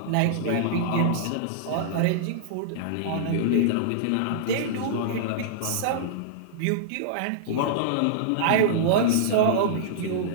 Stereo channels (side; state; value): both; different; correlation -0.02